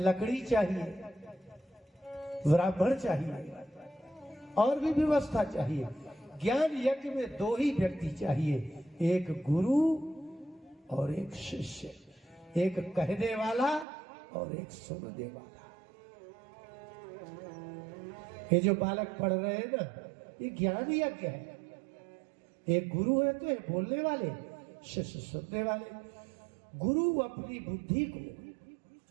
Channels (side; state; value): left; drops out; at 13.9 s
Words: चाहिए, ब्राह्मण चाहिए, और भी व्यवस्था चाहिए। ज्ञान यज्ञ में दो ही व्यक्ति चाहिए, एक गुरु और एक शिष्य, एक कहने वाला और एक सुनने वाला। ये जो बालक पढ़ रहे हैं ना, ये ज्ञान यज्ञ है। एक गुरु है तो ये बोलने वाले, शिष्य सुनने वाले। गुरु अपनी बुद्धि को,